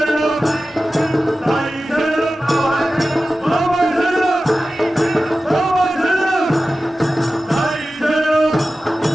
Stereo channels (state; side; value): normal; both; correlation 0.95